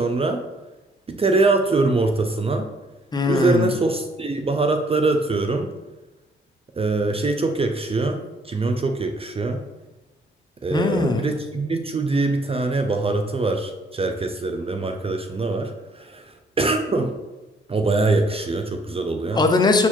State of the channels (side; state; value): both; normal; correlation 0.64